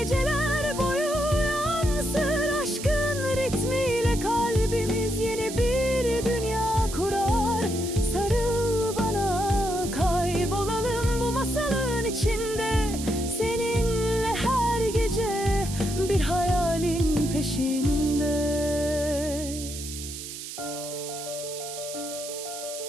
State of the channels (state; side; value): noise; right; hiss, 10 dB below the sound